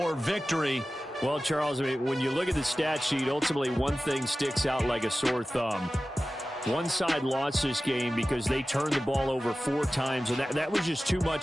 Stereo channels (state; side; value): normal; both; correlation 0.95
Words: victory. Well, Charles, I mean, when you look at the stat sheet, ultimately one thing sticks out like a sore thumb. One side lost this game because they turned the ball over 4 times, and that was just too